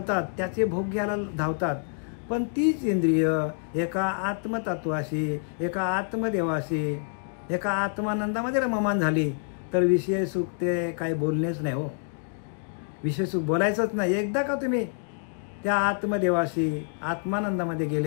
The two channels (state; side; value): silent; right; digital silence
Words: त्याचे भोग घ्यायला धावतात. पण तीच इंद्रिय एका आत्मतत्वाशी, एका आत्मदेवाशी, एका आत्मानंदामध्ये रममान झाली तर विषय सुख ते काय बोलणेच नाही. हो, विषय सुख बोलायचंच नाही. एकदा का तुम्ही त्या आत्मदेवाशी आत्मानंदामध्ये